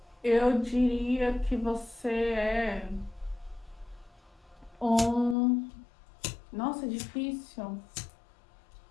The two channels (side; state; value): right; drops out; at 5.4 s